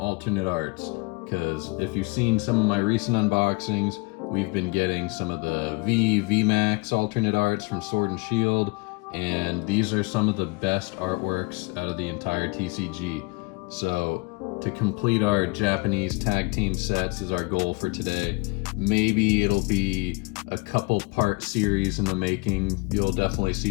arts, because if you've seen some of my recent unboxings, we've been getting some of the VMAX alternate arts from Sword and Shield, and these are some of the best artworks out of the entire TCG. So to complete our Japanese tag team sets is our goal for today. Maybe it'll be a couple part series in the making. You'll definitely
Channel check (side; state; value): right; quieter; 27.0 dB